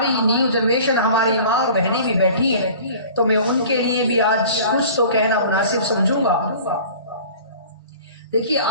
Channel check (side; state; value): both; inverted; correlation -0.43